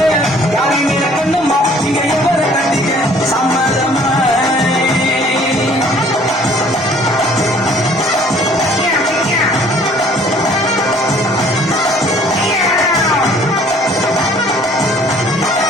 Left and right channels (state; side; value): normal; both; correlation 0.56